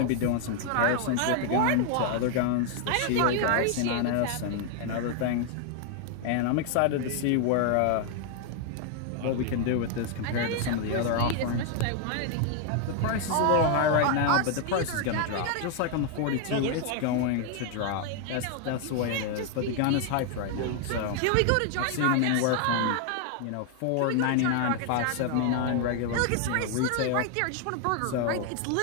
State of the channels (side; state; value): both; different; correlation 0.00